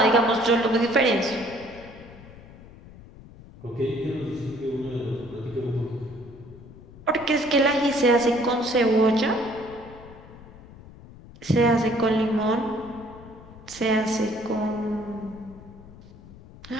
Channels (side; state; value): left; noise; rumble, 19 dB below the sound